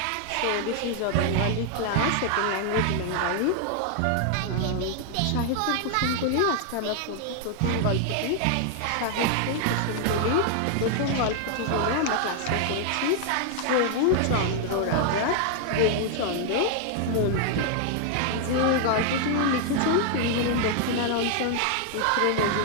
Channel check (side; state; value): both; different; correlation 0.00